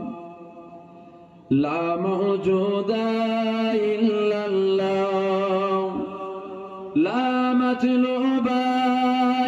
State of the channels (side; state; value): both; identical; correlation 1.00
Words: لا موجود إلا الله لا مطلوب